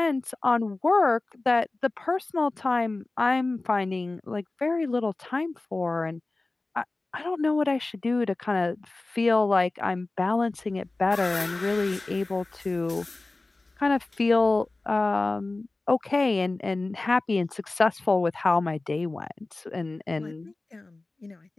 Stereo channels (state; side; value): quieter; right; 3.1 dB